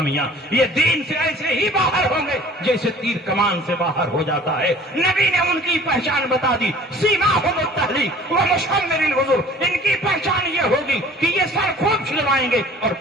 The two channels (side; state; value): both; normal; correlation 0.48